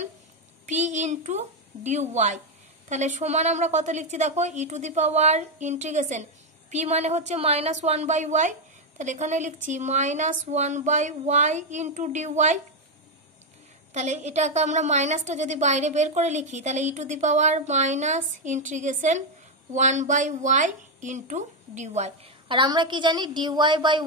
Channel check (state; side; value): normal; both; correlation 0.03